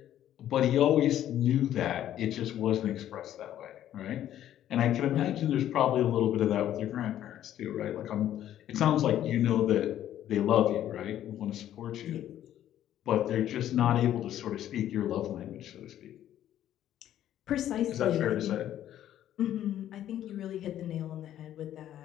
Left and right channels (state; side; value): quieter; right; 11.7 dB